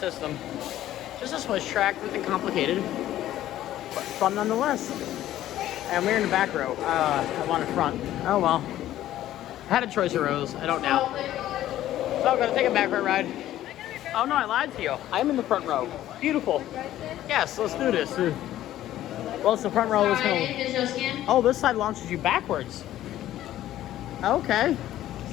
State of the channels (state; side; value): quieter; right; 13.3 dB